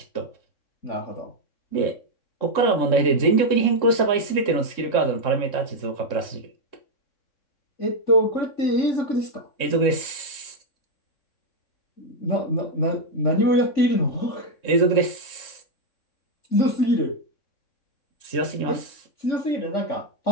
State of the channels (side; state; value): right; late; 3.6 ms